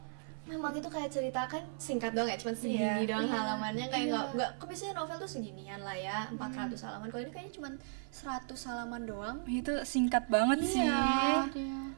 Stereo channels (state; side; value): silent; left; 54 dB below the other